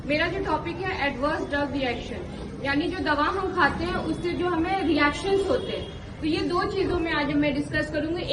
मेरा जो टॉपिक है एडवर्स ड्रग रिएक्शन, यानी जो दवा हम खाते हैं उससे जो हमें रिएक्शंस होते हैं। तो ये दो चीजों में आज मैं डिस्कस करूंगी,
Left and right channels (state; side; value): identical; both; correlation 1.00